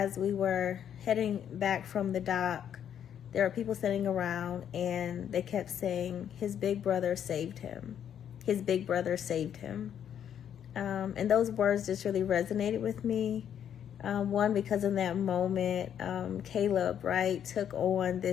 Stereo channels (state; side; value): quieter; right; 9.3 dB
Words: we were heading back from the dock, there were people sitting around and they kept saying, his big brother saved him. His big brother saved him. And those words just really resonated with me. One, because in that moment, Caleb, right, took on